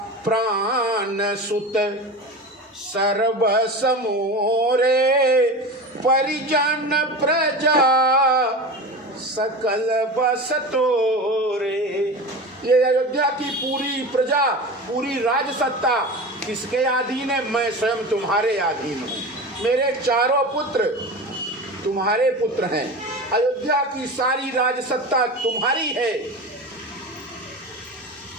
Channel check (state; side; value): normal; both; correlation 0.29